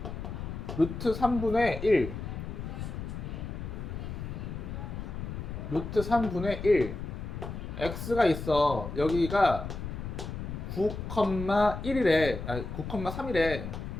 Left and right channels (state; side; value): noise; left; rumble, 7 dB below the sound